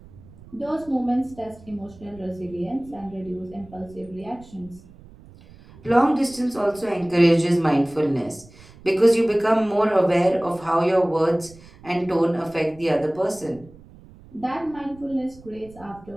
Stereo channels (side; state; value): right; noise; rumble, 22 dB below the sound